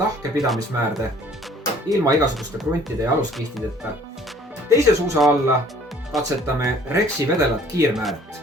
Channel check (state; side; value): normal; both; correlation 0.55